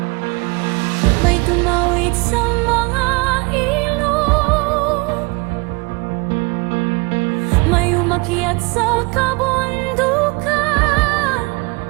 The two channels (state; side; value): quieter; left; 27.8 dB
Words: May tumawid sa mga ilog, may umakyat sa kabundukan,